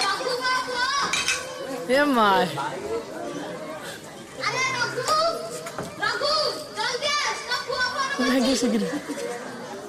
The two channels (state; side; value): identical; both; correlation 1.00